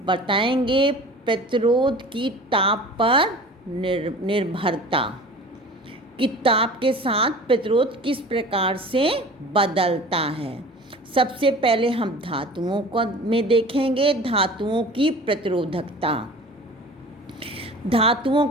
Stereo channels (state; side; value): normal; both; correlation 0.41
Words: बताएंगे प्रतिरोध की ताप पर निर्भरता कि ताप के साथ प्रतिरोध किस प्रकार से बदलता है। सबसे पहले हम धातुओं को में देखेंगे धातुओं की प्रतिरोधकता। धातुओं